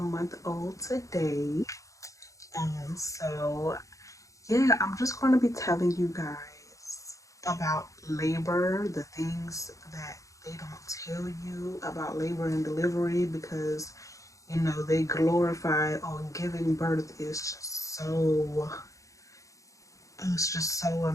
old today. So yeah, I'm just going to be telling you guys about labor, the things that they don't tell you about labor and delivery, because they glorify giving birth is just so, it's just so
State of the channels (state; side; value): late; right; 0.16 ms